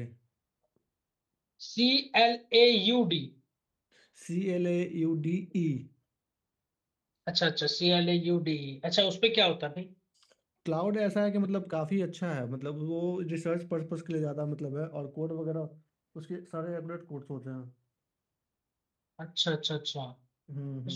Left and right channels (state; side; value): identical; both; correlation 1.00